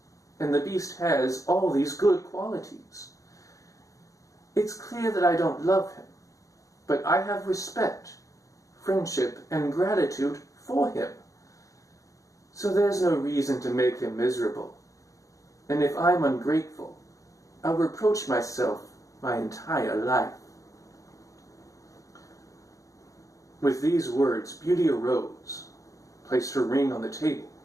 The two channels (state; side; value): late; right; 0.16 ms